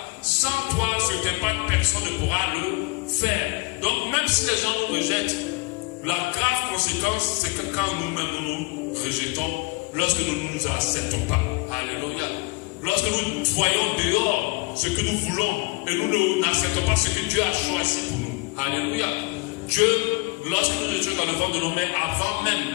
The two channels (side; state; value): right; quieter; 26.5 dB